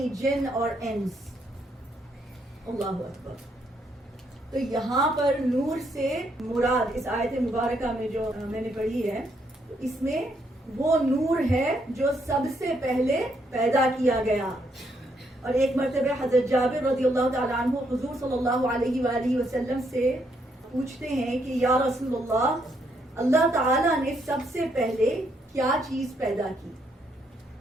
jinn or ins. Allahu Akbar. تو یہاں پر نور سے مراد اس آیت مبارکہ میں جو میں نے پڑھی ہے، اس میں وہ نور ہے جو سب سے پہلے پیدا کیا گیا. اور ایک مرتبہ حضرت جابر رضی اللہ تعالیٰ عنہ حضور صلی اللہ علیہ وآلہ وسلم سے پوچھتے ہیں کہ یا رسول اللہ تعالیٰ نے سب سے پہلے کیا چیز پیدا کی؟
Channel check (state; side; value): normal; both; correlation 0.74